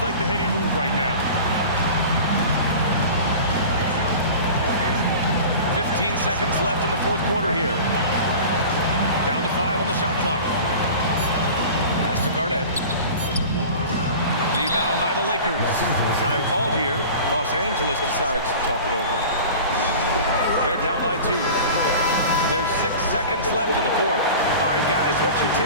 like the heady move right now. 15 seconds left in the fourth quarter here. Down to 5 on the shot clock. Pass to Garnett. Rebound by the Lakers. Time called here. Los Angeles decides to talk it over. They're down by 2. There's 6 seconds left in the fourth. All right, guys, what's your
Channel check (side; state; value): both; inverted; correlation -0.37